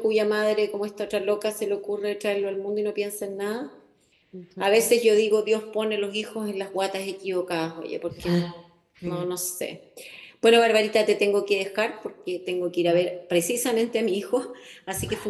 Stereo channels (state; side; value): identical; both; correlation 1.00